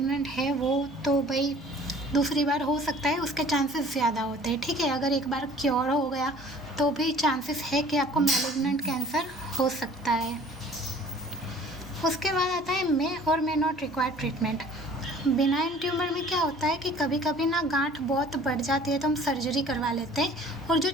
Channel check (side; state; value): both; normal; correlation 0.50